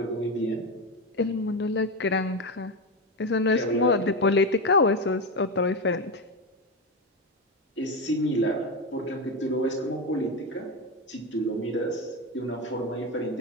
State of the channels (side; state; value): both; normal; correlation 0.15